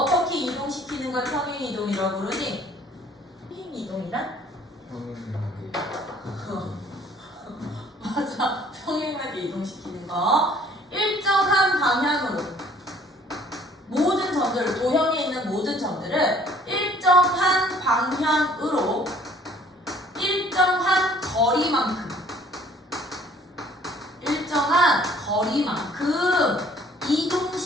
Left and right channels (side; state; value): both; normal; correlation 0.57